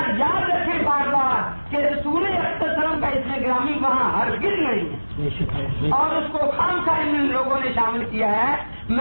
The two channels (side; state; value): both; inverted; correlation -1.00